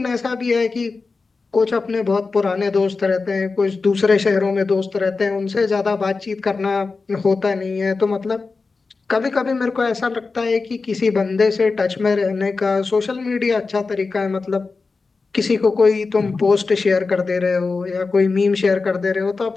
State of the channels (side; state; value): right; quieter; 4.2 dB